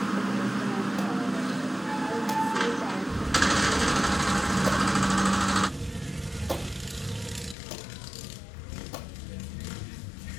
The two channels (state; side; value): drops out; right; at 7.6 s